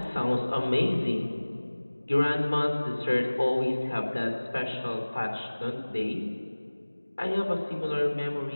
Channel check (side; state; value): both; inverted; correlation -1.00